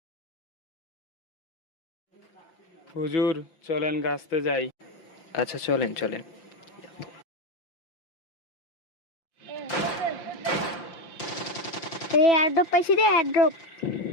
হুজুর চলেন গাছতে যাই। আচ্ছা চলেন চলেন। এই এয়ারড্রপ পাইছি রে, এয়ারড্রপ।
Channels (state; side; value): late; right; 5.8 ms